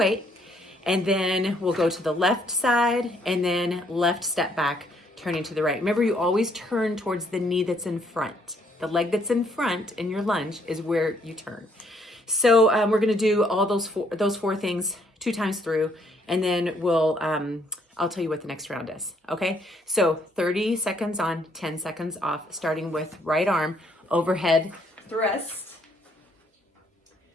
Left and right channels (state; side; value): normal; both; correlation 0.68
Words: And then we'll go to the left side and then left step back, turning to the right. Remember, you always turn towards the knee that's in front. The leg that's in front in your lunge is where you turn. So we're gonna do all those four things 2 times through, and then we'll, I'll tell you what the next round is, okay? So 30 seconds on, 10 seconds off, starting with right arm, overhead thrust.